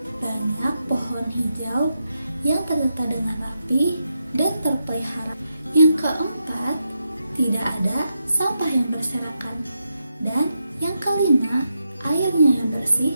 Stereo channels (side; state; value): both; inverted; correlation -0.85